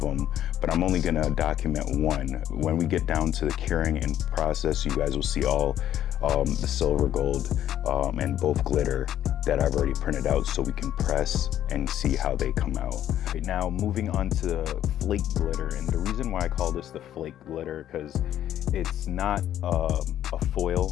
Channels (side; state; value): right; quieter; 11.4 dB